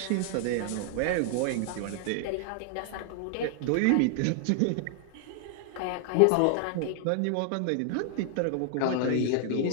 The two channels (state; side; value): different; both; correlation 0.00